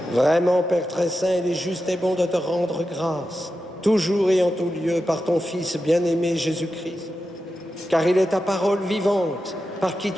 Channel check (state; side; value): normal; both; correlation 0.90